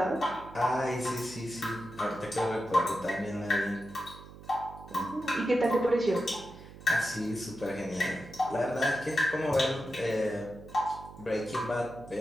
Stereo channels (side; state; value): right; noise; hum, 17 dB below the sound